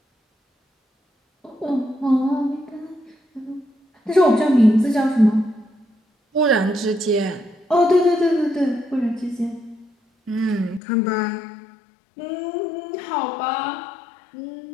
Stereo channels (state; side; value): drops out; right; at 10.8 s